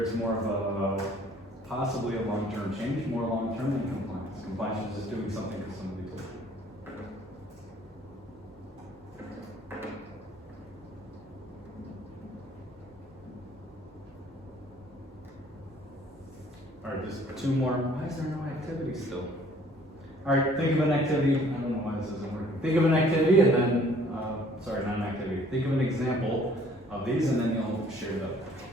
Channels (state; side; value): normal; both; correlation 0.57